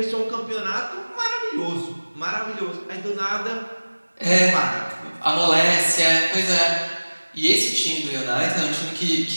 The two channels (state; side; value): inverted; both; correlation -1.00